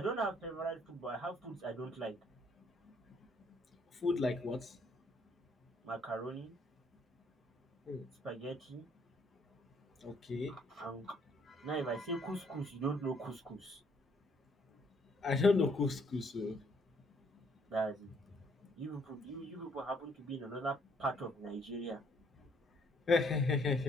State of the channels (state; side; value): normal; both; correlation 0.66